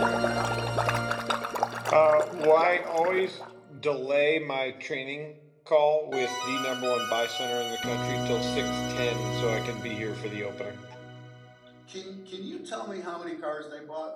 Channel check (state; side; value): identical; both; correlation 1.00